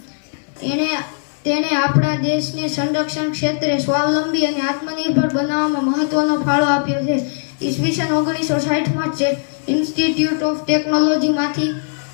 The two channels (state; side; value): silent; right; digital silence